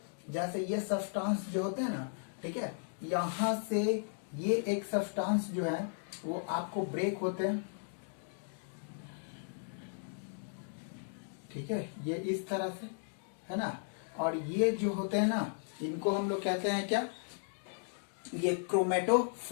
जैसे ये सब्सटेंस जो होते हैं ना, ठीक है, यहां से ये एक सब्सटेंस जो है वो आपको ब्रेक होते हैं, ठीक है, ये इस तरह से है ना। और ये जो होते हैं ना, इनको हम लोग कहते हैं क्या, ये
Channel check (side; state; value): right; silent; digital silence